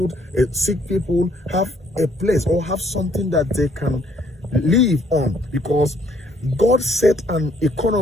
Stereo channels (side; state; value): both; normal; correlation 0.65